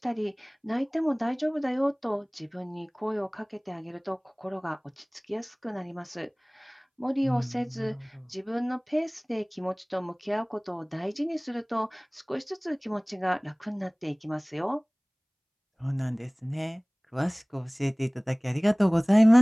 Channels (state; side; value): identical; both; correlation 1.00